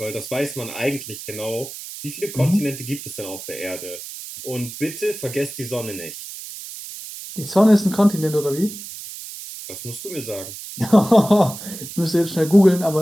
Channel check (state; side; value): noise; right; hiss, 11 dB below the sound